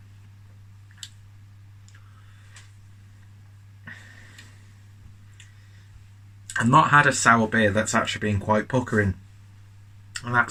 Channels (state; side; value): identical; both; correlation 1.00